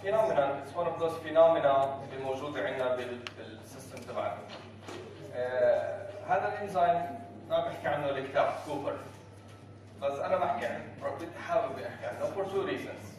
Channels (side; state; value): both; identical; correlation 1.00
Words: it's one of those phenomena اللي موجوده عندنا بالسيستم تبعنا. هذا الانزيم ما بحكي عنه الكتاب كوبر، بس انا بحكي عنه، بدي احاول احكي عنه for two reasons.